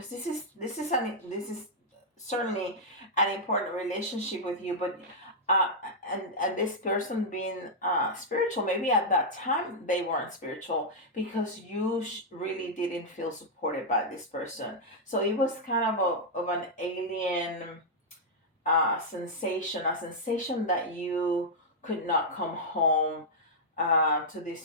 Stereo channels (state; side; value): normal; both; correlation -0.06